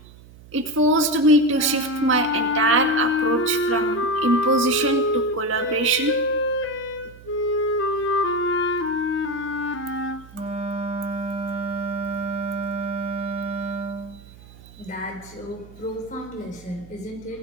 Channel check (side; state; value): right; noise; hum, 21 dB below the sound